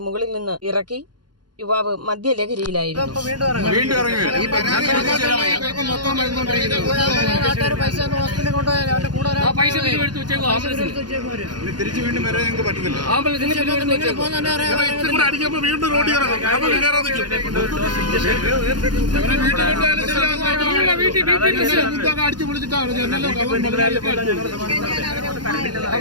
മുകളിൽ നിന്ന് ഇറക്കി. യുവാവ് മദ്യലഹരിയിലായിരുന്നു. അടിച്ചു പൊളിച്ചിട്ടാണ്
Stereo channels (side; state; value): left; late; 0.70 ms